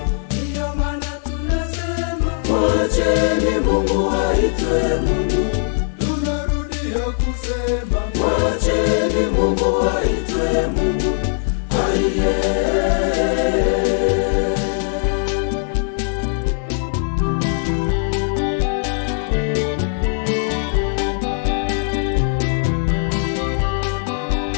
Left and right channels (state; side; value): silent; right; 66 dB below the other